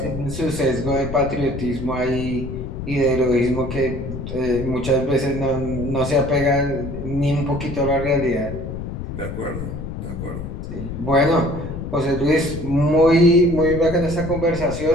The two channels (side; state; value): left; noise; rumble, 7 dB below the sound